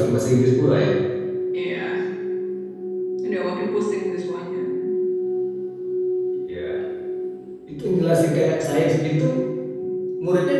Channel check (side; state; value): both; identical; correlation 1.00